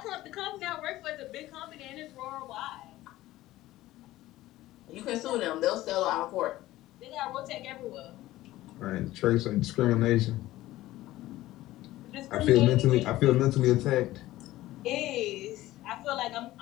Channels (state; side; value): quieter; right; 16.2 dB